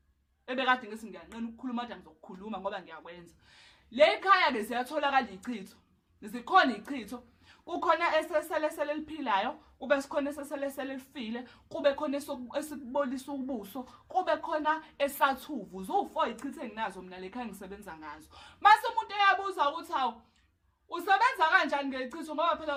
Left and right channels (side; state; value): both; identical; correlation 1.00